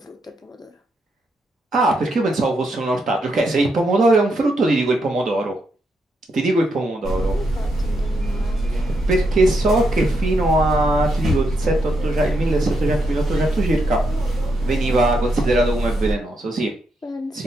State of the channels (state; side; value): normal; both; correlation 0.80